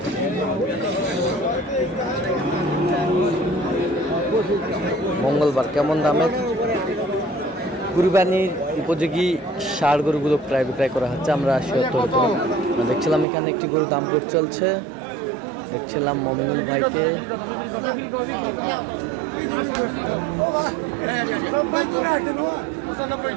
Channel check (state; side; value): drops out; left; at 13.2 s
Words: মঙ্গলবার। কেমন দামের কুরবানির উপযোগী ষাঁড় গরুগুলো প্রায় বিক্রয় করা হচ্ছে। আমরা দেখছিলাম এখানে একটি গরুর দাম দর চলছে। দেখছিলাম মমিনুল ভাইকে।